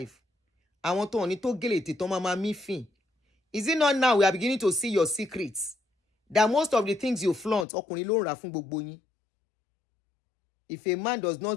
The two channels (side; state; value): right; drops out; at 7.7 s